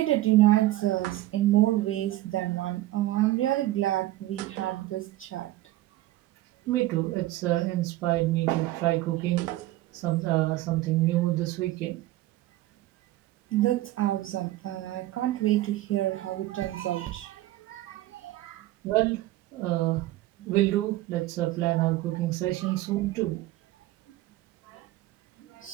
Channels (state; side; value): quieter; left; 16.1 dB